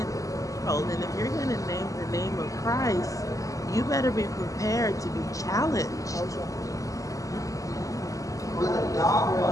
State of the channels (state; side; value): late; right; 0.16 ms